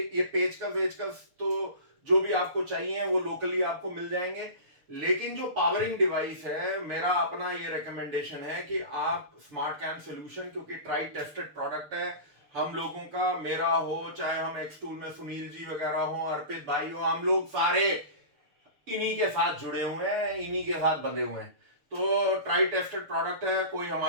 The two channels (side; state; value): left; late; 6.7 ms